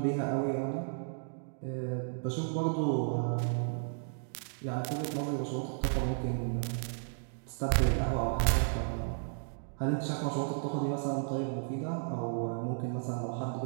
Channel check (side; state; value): left; silent; digital silence